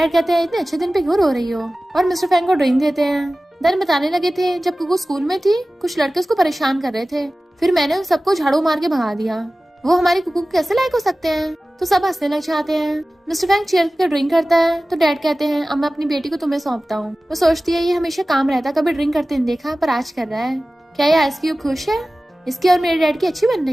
कहते हैं इतने अच्छे दिन पे क्यों रो रही हो, और मिस्टर फैंग को ड्रिंक देते हैं। देन बताने लगे थे जब कुकू स्कूल में थी कुछ लड़के उसको परेशान कर रहे थे, फिर मैंने उन सबको झाड़ू मार के भगा दिया। वो हमारी कुकू कैसे लायक हो सकते हैं। तो सब हंसने लग जाते हैं। मिस्टर फैंग चेयर पे ड्रिंक करता है तो डैड कहते हैं अब मैं अपनी बेटी को तुम्हें सौंपता हूँ। वो सोचती है ये हमेशा काम रहता, कभी ड्रिंक करते नहीं देखा पर आज कर रहा है। क्या ये आइस क्यूब खुश है, इसकी और मेरे डैड की अच्छी बन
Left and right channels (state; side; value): normal; both; correlation 0.97